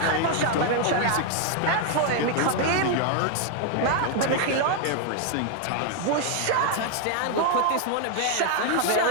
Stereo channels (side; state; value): both; different; correlation 0.01